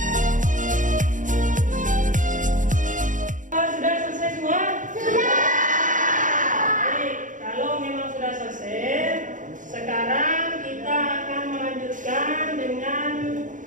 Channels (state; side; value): late; left; 0.37 ms